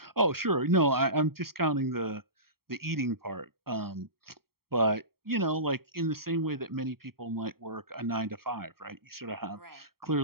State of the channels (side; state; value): left; late; 0.94 ms